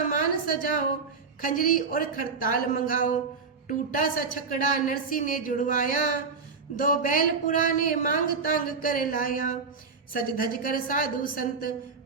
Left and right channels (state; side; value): quieter; left; 5.0 dB